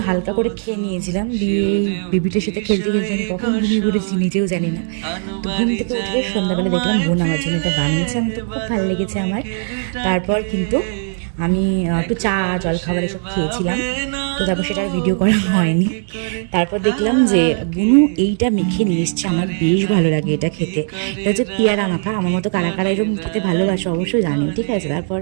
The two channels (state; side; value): silent; left; 55 dB below the other